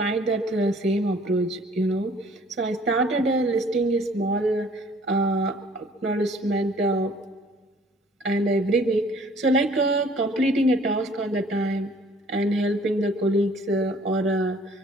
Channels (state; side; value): normal; both; correlation 0.55